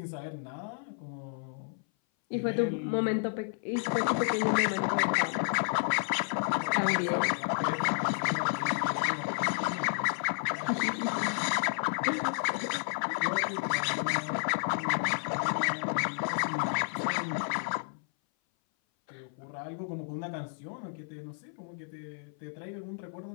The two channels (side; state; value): right; silent; 57 dB below the other